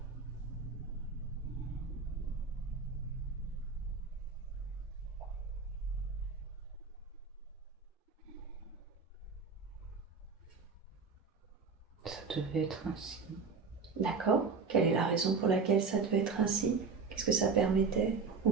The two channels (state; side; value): quieter; left; 4.9 dB